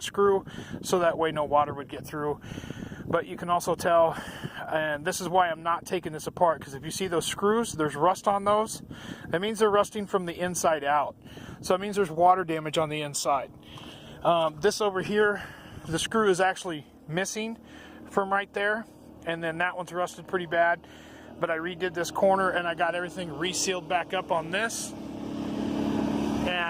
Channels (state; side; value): identical; both; correlation 1.00